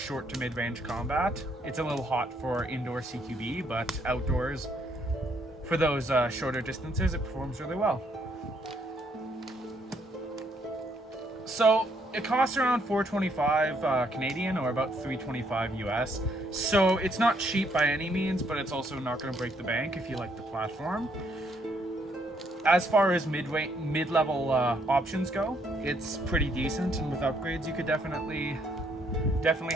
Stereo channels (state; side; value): normal; both; correlation 0.71